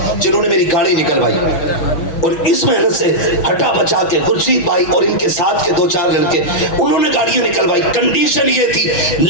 جنہوں نے میری گاڑی نکلوائی، اور اس محنت سے ہٹا بچا کے خورشید بھائی اور ان کے ساتھ کے 2-4 لڑکے انہوں نے گاڑیاں نکلوائی۔ کنڈیشن یہ تھی،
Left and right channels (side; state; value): right; late; 6.2 ms